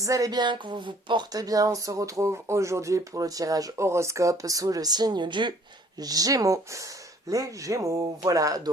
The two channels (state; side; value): normal; both; correlation 0.57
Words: allez bien, que vous vous portez bien. On se retrouve aujourd'hui pour le tirage horoscope sous le signe du Gémeaux. Les Gémeaux, voilà.